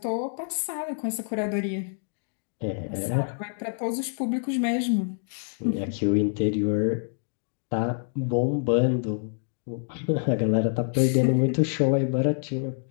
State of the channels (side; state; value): right; silent; digital silence